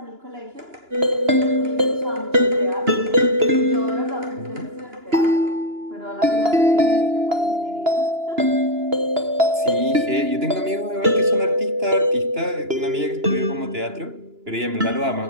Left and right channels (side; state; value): left; late; 2.9 ms